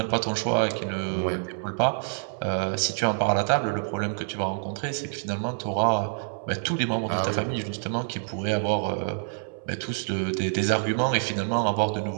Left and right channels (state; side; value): silent; left; 60 dB below the other